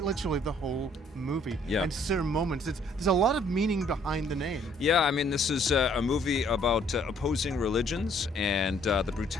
literally the whole movie. And certain moments. There's a lot of meaning behind the name. Yeah, I mean, this is a movie about opposing religions and the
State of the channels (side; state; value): both; normal; correlation 0.62